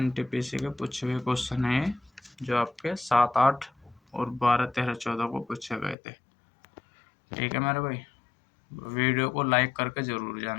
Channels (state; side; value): drops out; right; at 6.0 s